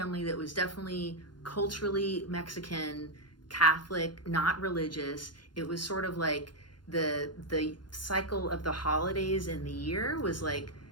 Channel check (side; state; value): right; late; 0.71 ms